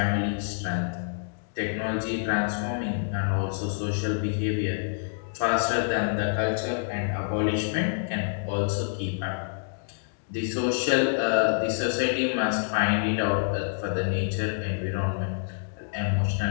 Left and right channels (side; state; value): right; silent; digital silence